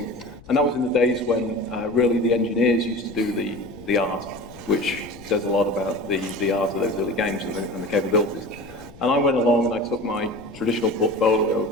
And that was in the days when really the engineers used to do the art, which says a lot about the art of those early games and the capabilities. And I went along and I took my traditional portfolio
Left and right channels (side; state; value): left; noise; rumble, 20 dB below the sound